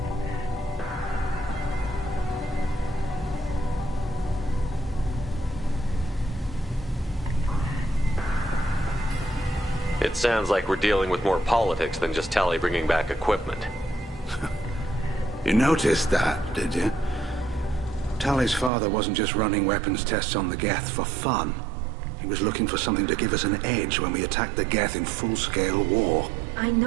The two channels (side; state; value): left; drops out; at 18.7 s